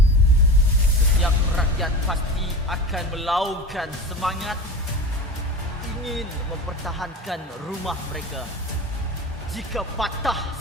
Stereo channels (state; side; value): normal; both; correlation 0.31